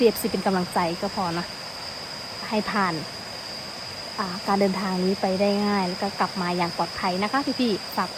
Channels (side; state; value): both; identical; correlation 1.00